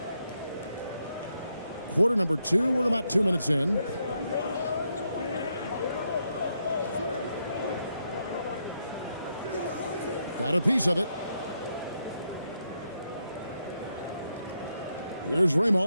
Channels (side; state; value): both; inverted; correlation -0.80